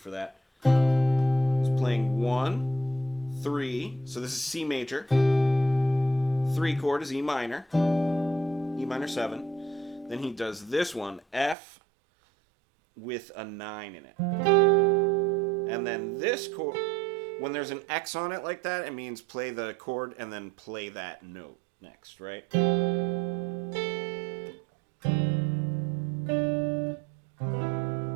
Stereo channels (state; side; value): drops out; left; at 11.6 s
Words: that. He's playing 1, 3, so this is C major. 3 chord is E minor, E minor 7. Then he does this one, F with a 9 in it. And then this chord, when there's an X on it like that, it means play the chord and then play that note next, right?